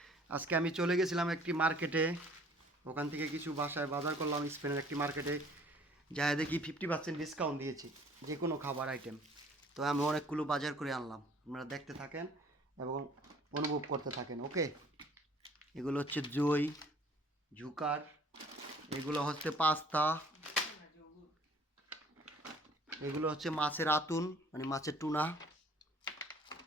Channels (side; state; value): both; normal; correlation 0.55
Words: আজকে আমি চলে গেছিলাম একটি মার্কেটে। ওখান থেকে কিছু বাসায় বাজার করলাম স্পেনের একটি মার্কেটে। যা দেখি 50% ডিসকাউন্ট দিয়েছি যে কোনো খাবার আইটেম। তো আমি অনেকগুলো বাজার করে আনলাম। আপনারা দেখতে থাকেন এবং অনুভব করতে থাকেন। ওকে, এগুলো হচ্ছে দই, ঝুকার, এগুলো হচ্ছে পাস্তা, এগুলো হচ্ছে মাছের আতুন মানে মাছের টুনা।